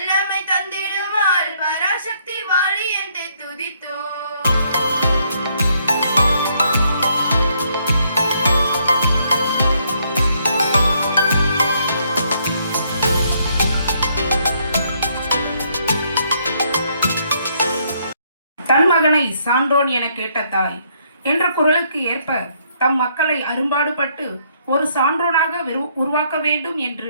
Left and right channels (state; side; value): inverted; both; correlation -0.70